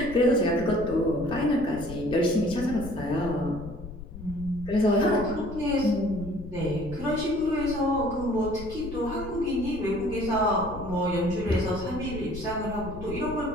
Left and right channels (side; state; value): left; noise; rumble, 12 dB below the sound